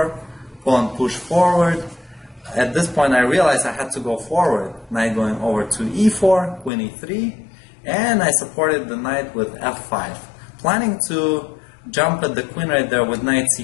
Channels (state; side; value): drops out; right; at 6.7 s